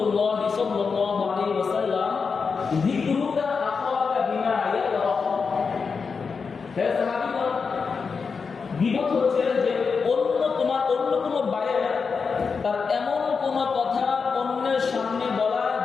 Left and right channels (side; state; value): right; quieter; 5.3 dB